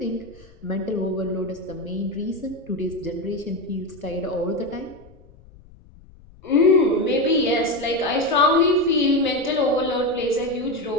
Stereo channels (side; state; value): left; noise; rumble, 24 dB below the sound